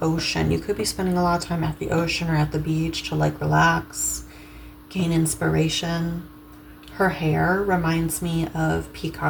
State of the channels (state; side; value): identical; both; correlation 1.00